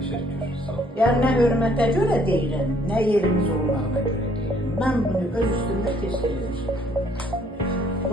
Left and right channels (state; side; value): normal; both; correlation 0.63